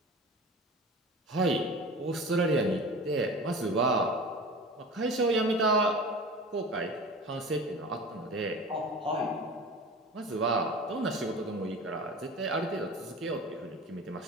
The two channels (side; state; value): both; normal; correlation 0.36